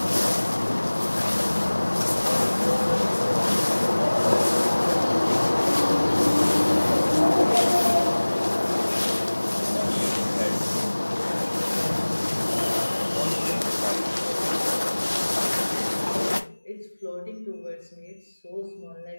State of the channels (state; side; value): inverted; both; correlation -1.00